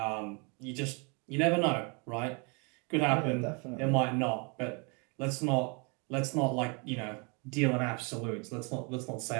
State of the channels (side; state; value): left; quieter; 33.1 dB